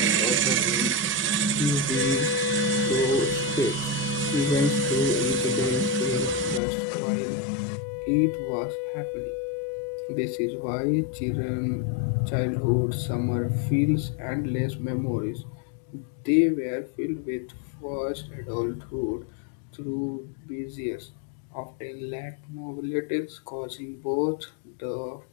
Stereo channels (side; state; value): right; drops out; at 6.6 s